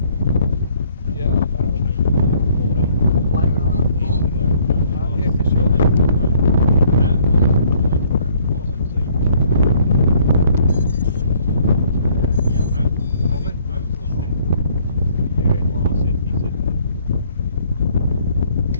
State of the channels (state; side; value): inverted; both; correlation -0.61